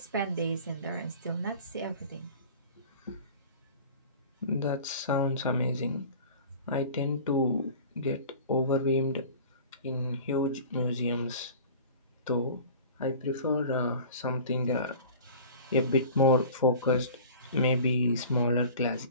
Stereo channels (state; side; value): inverted; both; correlation -0.41